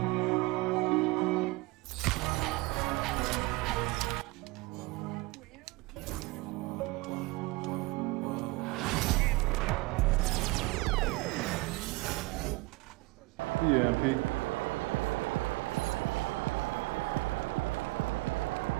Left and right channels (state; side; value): quieter; left; 22.1 dB